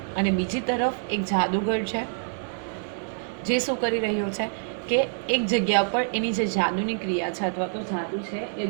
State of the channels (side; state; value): left; silent; 61 dB below the other